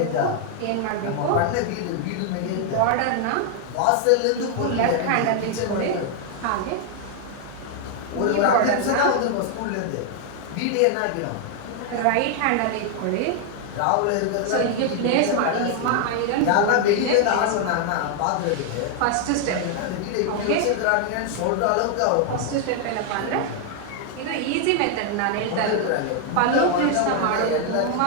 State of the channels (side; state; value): both; different; correlation 0.00